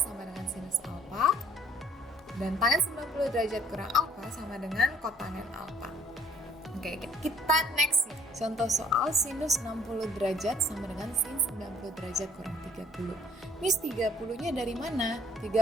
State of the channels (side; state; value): both; normal; correlation 0.58